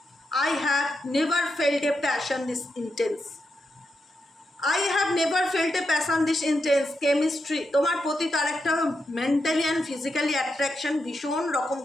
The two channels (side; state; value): both; normal; correlation 0.85